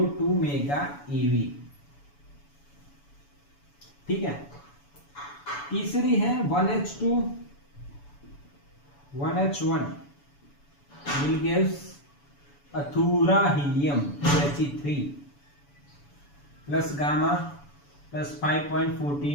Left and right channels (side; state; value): right; late; 7.0 ms